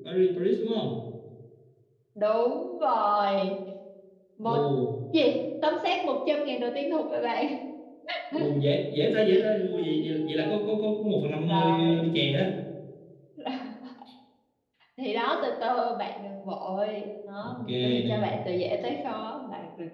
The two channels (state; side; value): identical; both; correlation 1.00